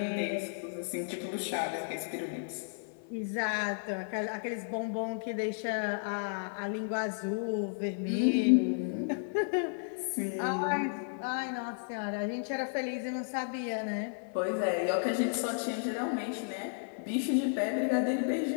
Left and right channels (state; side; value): silent; right; 56 dB below the other